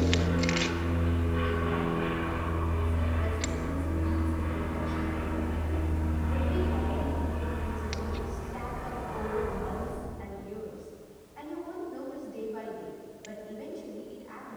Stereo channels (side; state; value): both; identical; correlation 1.00